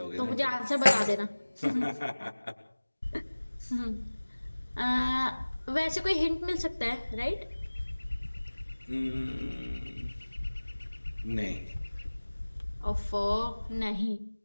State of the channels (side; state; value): both; inverted; correlation -1.00